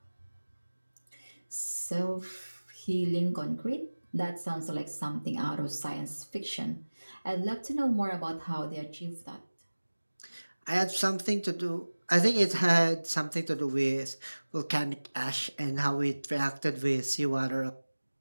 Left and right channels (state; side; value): inverted; both; correlation -1.00